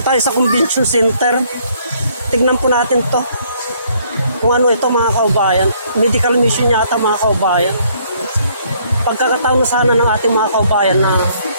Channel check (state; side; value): inverted; both; correlation -0.65